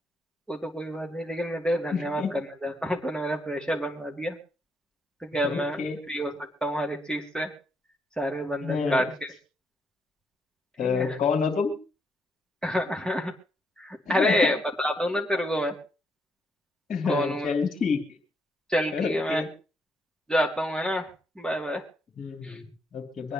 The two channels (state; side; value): normal; both; correlation 0.75